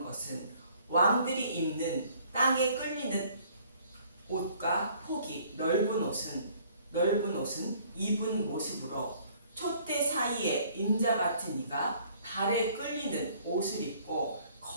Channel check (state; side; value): inverted; both; correlation -0.58